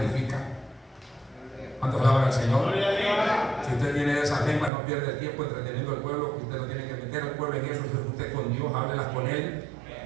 ¿Cuántos alaban al Señor? Si usted tiene esas lenguas, no pierde el tiempo entreteniendo al pueblo. Usted no tiene que meter al pueblo en eso. Usted con Dios, háblelas con Él.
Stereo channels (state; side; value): drops out; left; at 4.7 s